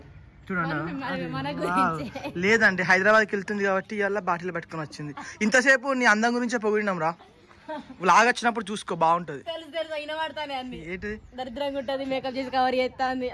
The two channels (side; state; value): both; identical; correlation 1.00